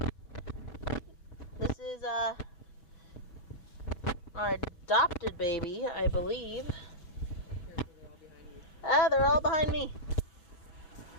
This is our adopted baby, I believe. They're all behind me.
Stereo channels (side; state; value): right; late; 5.7 ms